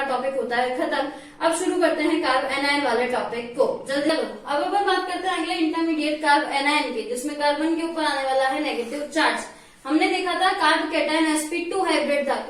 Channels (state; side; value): identical; both; correlation 1.00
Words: टॉपिक होता है खत्म। अब शुरू करते हैं कार्ब एनायन वाले टॉपिक को, जल्दी लो। अब अपन बात करते हैं अगले इंटरमीडिएट कार्ब एनायन की, जिसमें कार्बन के ऊपर आने वाला है नेगेटिव चार्ज। हमने देखा था कार्ब कैटायन sp2 हाइब्रिड था